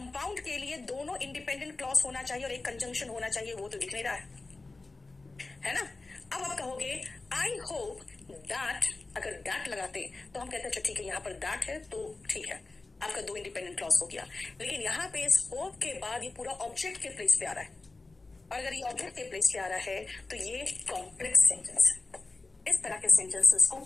के लिए दोनों इंडिपेंडेंट क्लॉज होना चाहिए और एक कंजंक्शन होना चाहिए, वो तो दिख नहीं रहा है ना। अब आप कहोगे आई होप दैट, अगर दैट लगाते तो हम कहते हैं अच्छा ठीक है, यहाँ पर दैट है तो ठीक है, आपका दो इंडिपेंडेंट क्लॉज हो गया। लेकिन यहाँ पे इस होप के बाद ये पूरा ऑब्जेक्ट के प्लेस पे आ रहा है, और अगर ये ऑब्जेक्ट के प्लेस पे आ रहा है तो ये कॉम्प्लेक्स सेंटेंस है। इस तरह के सेंटेंसेस को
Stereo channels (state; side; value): quieter; right; 3.5 dB